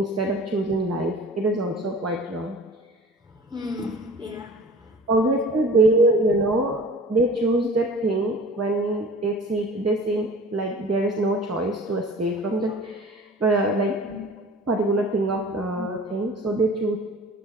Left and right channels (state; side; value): normal; both; correlation 0.43